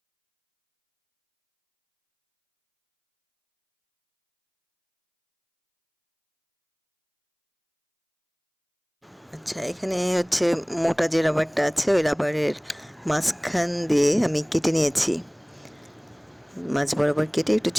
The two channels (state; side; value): identical; both; correlation 1.00